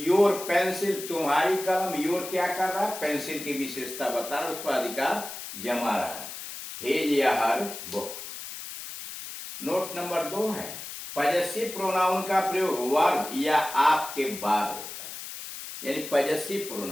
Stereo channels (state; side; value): noise; left; hiss, 10 dB below the sound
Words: पेंसिल, तुम्हारी कलम, योर क्या कर रहा है, पेंसिल की विशेषता बता रहा है, उस पर अधिकार जमा रहा है। हेज या हर बुक। नोट नंबर 2 है, पॉजेसिव प्रोनाउन का प्रयोग वर्ब या आप के बाद होता है, यानी पॉजेसिव